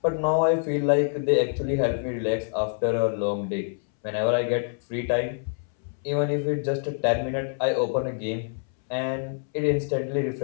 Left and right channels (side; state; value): right; silent; 61 dB below the other